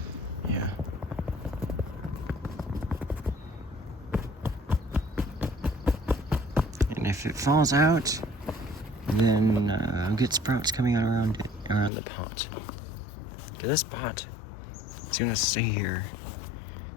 Yeah. And if it falls out, then I'll get sprouts coming out around the pot. This pot is gonna stay here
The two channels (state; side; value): drops out; right; at 11.9 s